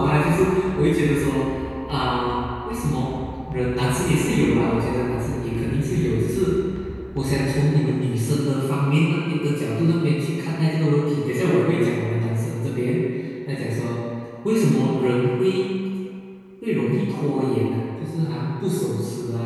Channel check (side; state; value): both; identical; correlation 1.00